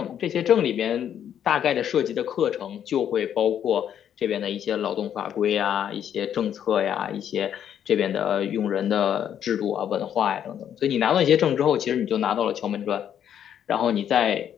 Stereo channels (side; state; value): right; quieter; 9.5 dB